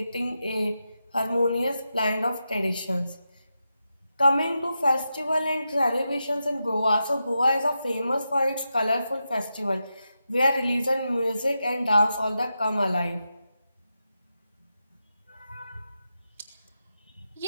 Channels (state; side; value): inverted; both; correlation -0.88